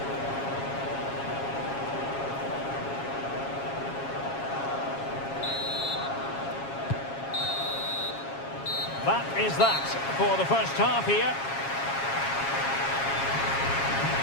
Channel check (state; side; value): late; right; 7.3 ms